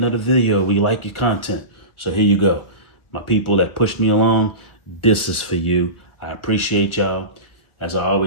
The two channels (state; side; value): late; right; 1.4 ms